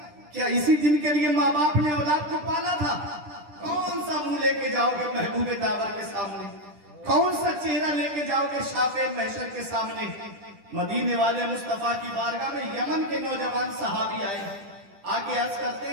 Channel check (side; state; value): left; late; 10 ms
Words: क्या इसी दिन के लिए माँ बाप ने औलाद को पाला था? कौन सा मुंह लेके जाओगे महबूबे दावर के सामने? कौन सा चेहरा लेके जाओगे शाफे महशर के सामने? मदीने वाले मुस्तफा की बारगाह में यमन के नौजवान सहाबी आए, आके अर्ज करते